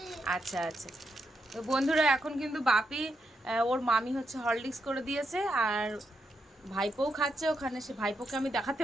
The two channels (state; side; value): normal; both; correlation 0.82